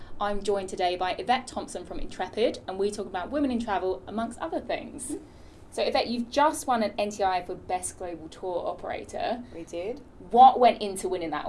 I'm joined today by Yvette Thompson from Intrepid, and we talk about women in travel amongst other things. So Yvette, you've just won an NTIA for Best Global Tour Operator. We did. What went into winning that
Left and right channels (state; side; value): identical; both; correlation 1.00